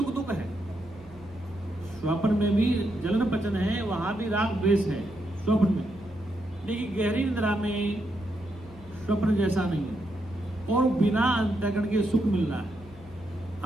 दुख है, स्वप्न में भी जलन पचन है, वहां भी राग द्वेष है स्वप्न में। लेकिन गहरी निद्रा में स्वप्न जैसा नहीं है और बिना अंतःकरण के सुख मिल रहा है।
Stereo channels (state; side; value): normal; both; correlation 0.81